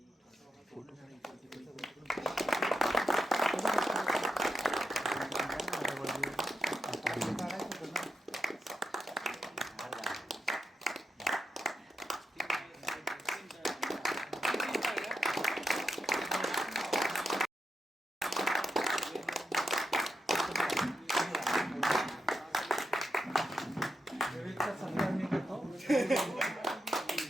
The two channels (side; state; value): both; normal; correlation 0.85